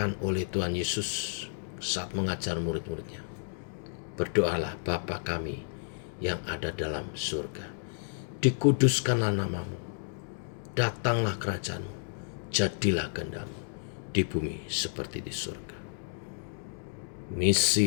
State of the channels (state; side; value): silent; right; digital silence